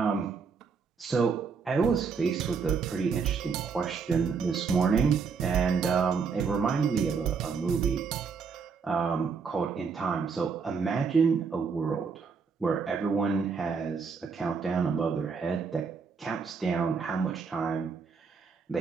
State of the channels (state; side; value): quieter; left; 5.5 dB